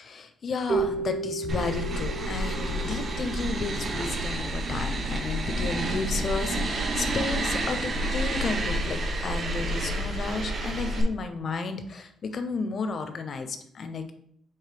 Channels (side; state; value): both; normal; correlation 0.71